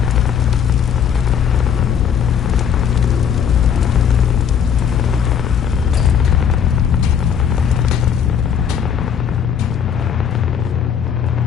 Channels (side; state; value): right; quieter; 7.9 dB